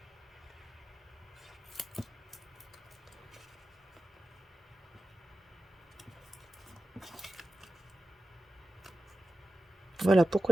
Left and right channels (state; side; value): normal; both; correlation 0.93